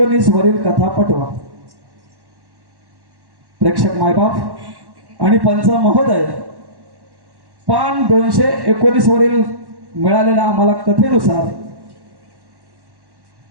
वरील कथा पटवा. प्रेक्षक मायबाप आणि पंच महोदय, पान 219 वरील मिळालेल्या आम्हाला कथेनुसार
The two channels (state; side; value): late; left; 1.1 ms